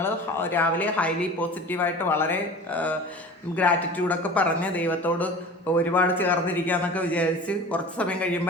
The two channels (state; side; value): normal; both; correlation 0.38